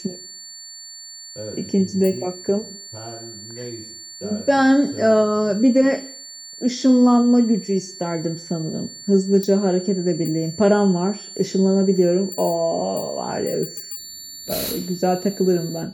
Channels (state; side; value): identical; both; correlation 1.00